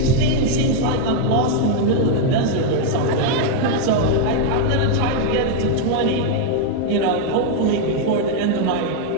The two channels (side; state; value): both; different; correlation 0.00